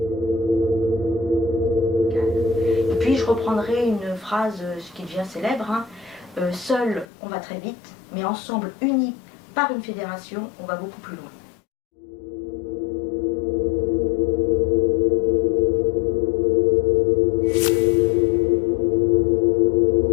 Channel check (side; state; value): right; drops out; at 7.1 s